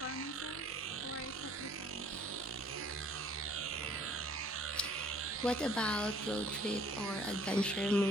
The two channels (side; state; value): both; normal; correlation 0.56